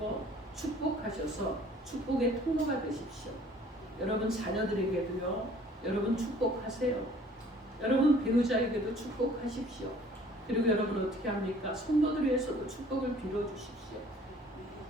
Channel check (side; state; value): both; normal; correlation 0.54